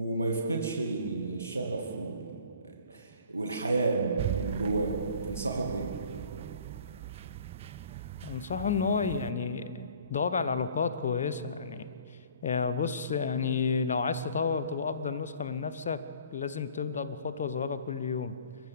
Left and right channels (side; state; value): both; inverted; correlation -0.50